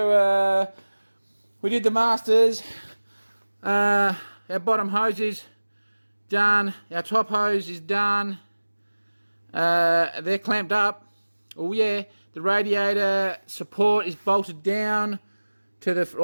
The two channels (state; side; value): inverted; both; correlation -1.00